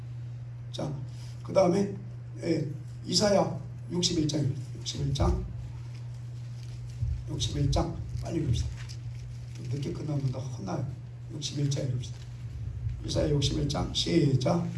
자, 그 다음에 이사야 61장 빨리 읽읍시다. 늦게 끝나면 더 혼나요. 61장 읽읍시다. 이사야 61장 시작.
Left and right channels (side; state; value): both; identical; correlation 1.00